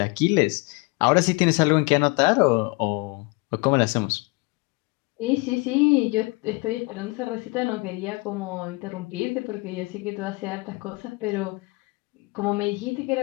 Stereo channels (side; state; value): right; quieter; 26.9 dB